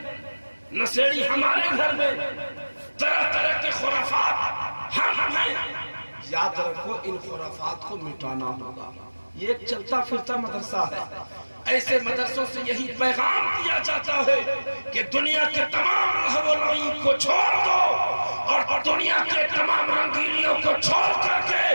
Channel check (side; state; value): both; inverted; correlation -1.00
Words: نشیڑی ہمارے گھر میں، طرح طرح کے خرافات ہم ہیں۔ یاد رکھو ان خرافات کو مٹانا ہوگا۔ یہ ایک چلتا پھرتا مدرسہ ہے۔ ایسے مدرسوں سے یہی پیغام دیا جاتا ہے کہ دنیا کے تمام لہو و لعب کو چھوڑ دو اور دنیا کے تمام رنگینیوں کو چھوڑ کر کے